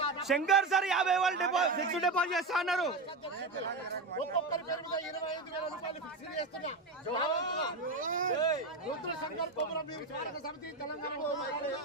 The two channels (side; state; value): left; quieter; 3.4 dB